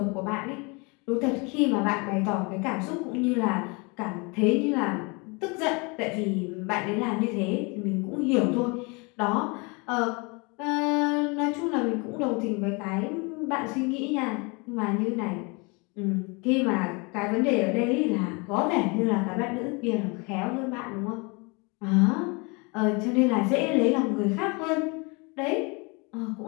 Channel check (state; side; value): quieter; right; 29.6 dB